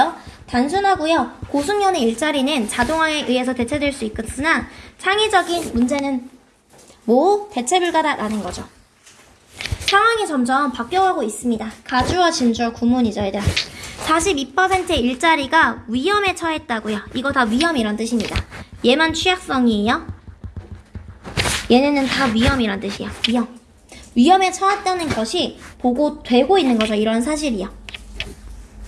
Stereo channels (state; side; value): identical; both; correlation 1.00